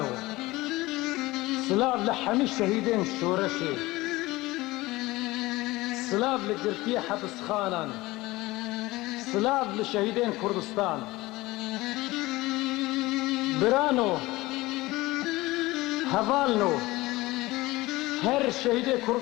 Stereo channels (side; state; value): right; quieter; 19.8 dB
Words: سلاف لحمي الشهيدين شورشي، سلاف لقرتي حبس خانان، سلاف لشهيدين كردستان. برانو هفالنو هر شهيد